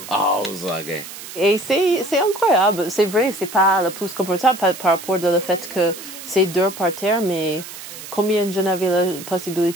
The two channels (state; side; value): noise; right; hiss, 13 dB below the sound